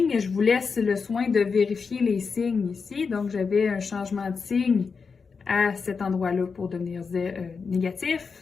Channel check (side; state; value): right; quieter; 5.2 dB